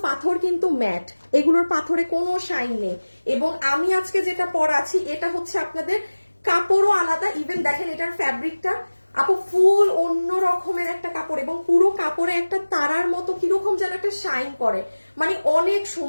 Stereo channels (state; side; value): inverted; both; correlation -1.00